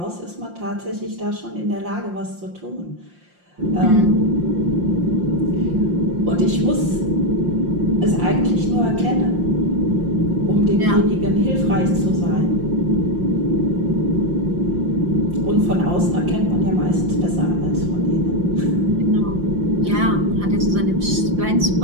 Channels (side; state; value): left; late; 5.7 ms